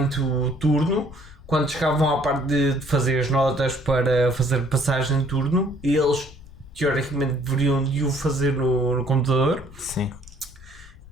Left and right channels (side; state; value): left; noise; rumble, 20 dB below the sound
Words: o turno, quando chegavam à parte de fazer as notas para fazer passagem de turno, eles teoricamente deveriam de o fazer no computador. Sim.